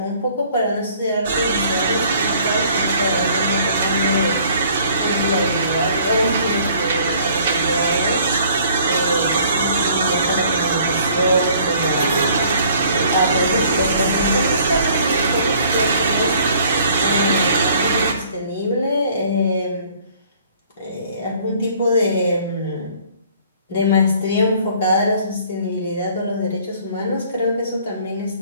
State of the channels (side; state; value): both; inverted; correlation -0.57